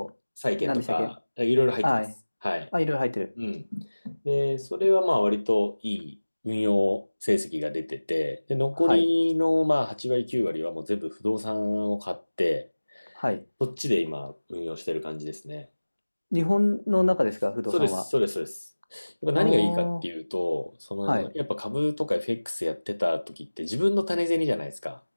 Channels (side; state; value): both; inverted; correlation -1.00